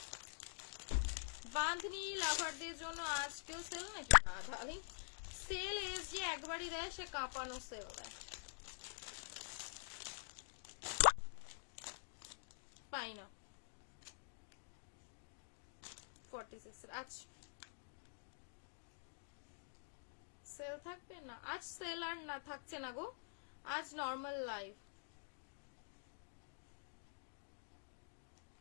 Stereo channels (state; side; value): silent; right; digital silence